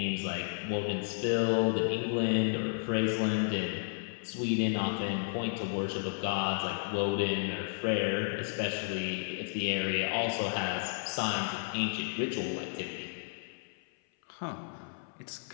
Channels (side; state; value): right; silent; 56 dB below the other